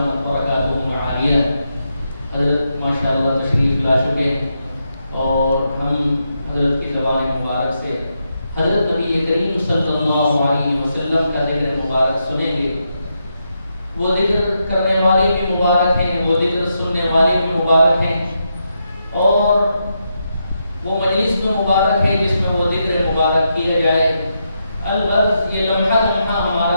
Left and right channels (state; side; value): inverted; both; correlation -0.83